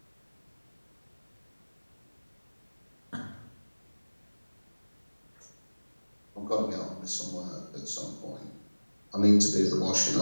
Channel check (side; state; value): both; inverted; correlation -1.00